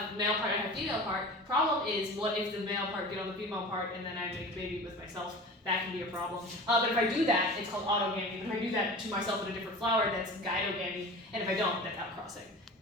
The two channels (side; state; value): both; normal; correlation 0.36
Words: male part, I have female part. Problem is, what if the male part get on the female part and then I make a baby with myself? That can be a problem. But if I do that, it's called autogamy. If I do that to myself in a different flower, that's gynogamy. And if I don't, that's outcrossing.